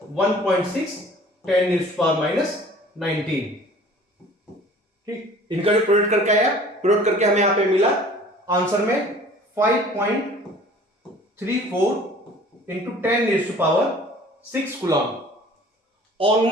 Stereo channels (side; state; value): both; normal; correlation 0.48